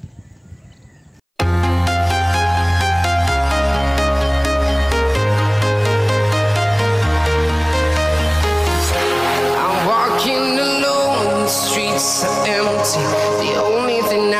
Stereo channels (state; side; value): identical; both; correlation 1.00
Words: Streets are empty. The only thing